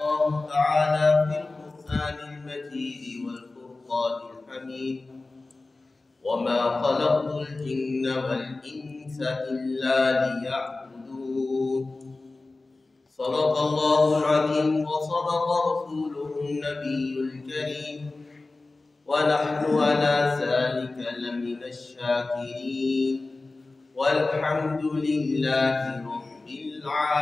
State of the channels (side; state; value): right; quieter; 3.3 dB